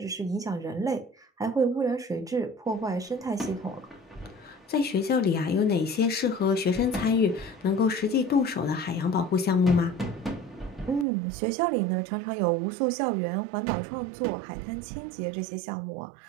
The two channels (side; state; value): left; drops out; at 11.1 s